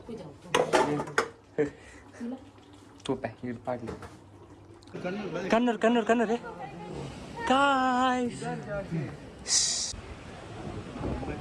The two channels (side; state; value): both; identical; correlation 1.00